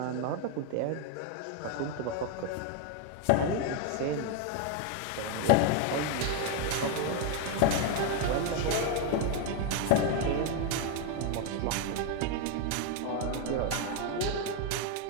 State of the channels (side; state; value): both; different; correlation 0.01